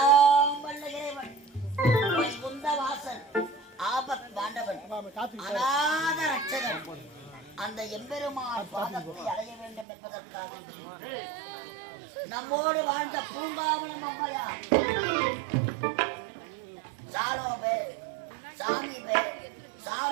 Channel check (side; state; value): left; drops out; at 9.9 s